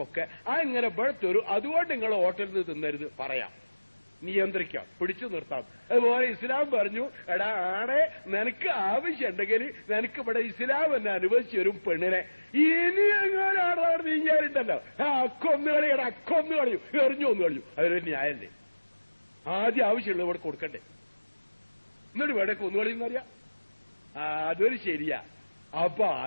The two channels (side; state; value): both; inverted; correlation -1.00